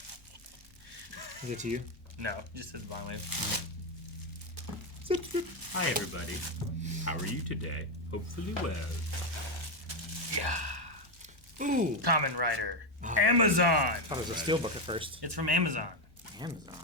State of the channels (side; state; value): both; normal; correlation 0.07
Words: Is it to you? No, just says Blind Wave. Hi everybody. How are you today? Hopefully well. Yeah. Ooh. Common Writer. Amazon. I thought it was a steelbook at first. It's from Amazon. Amazon.